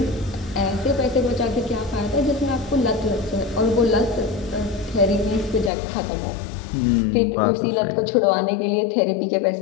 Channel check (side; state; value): right; drops out; at 5.7 s